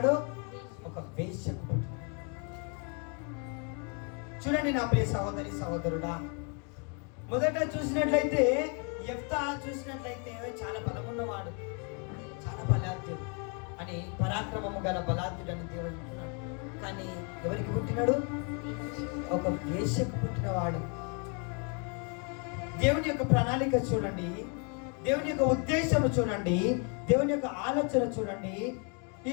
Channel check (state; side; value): quieter; right; 36.9 dB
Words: ఒక వేశ్యకు పుట్టినాడు. చూడండి నా ప్రియ సహోదరి సహోదరుడా, మొదట చూసినట్లయితే యెఫ్తా చూసినట్లయితే చాలా బలమున్నవాడు, చాలా బలాఢ్యుడు అని, పరాక్రమము గల బలాఢ్యుడు అని దేవుడు అంటున్నాడు. కానీ ఎవరికి పుట్టినాడు? ఒక వేశ్యకు పుట్టినవాడు. దేవుని యొక్క ప్రణాళిక చూడండి. దేవుని యొక్క ఉద్దేశం చూడండి, దేవుని యొక్క ఆలోచన చూడండి. ఈ